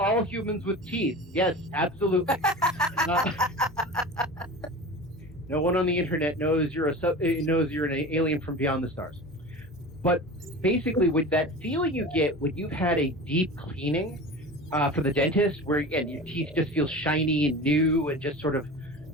humans with teeth. Yes, absolutely. No one on the internet knows you're an alien from beyond the stars. But basically, with that feeling you get when you've had a deep cleaning from the dentist, where again your teeth just feel shiny and new and just sort of,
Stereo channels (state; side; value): normal; both; correlation 0.34